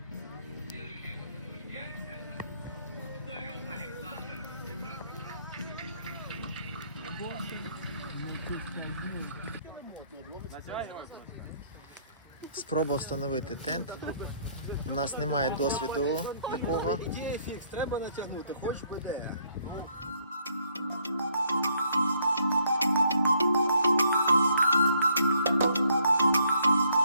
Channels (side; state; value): both; inverted; correlation -0.67